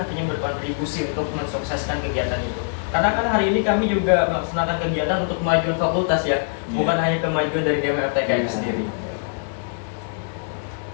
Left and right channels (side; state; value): right; silent; digital silence